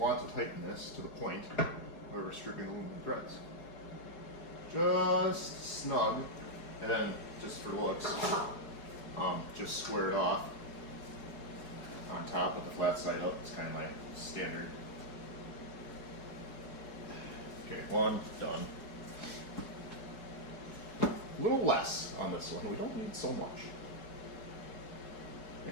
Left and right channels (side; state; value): right; late; 4.8 ms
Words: to tighten this to the point where we're stripping the aluminum threads. Just snug, and then just for looks, just square it off on top with the flat side up. It's kind of my standard. Okay, one done. A little less on this one. We don't need so much.